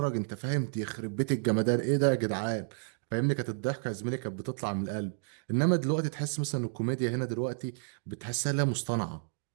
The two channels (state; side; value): silent; left; digital silence